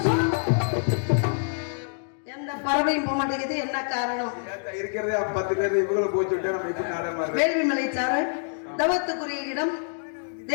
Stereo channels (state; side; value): silent; right; digital silence